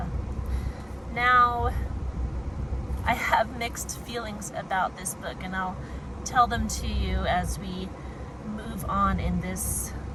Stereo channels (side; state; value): both; identical; correlation 1.00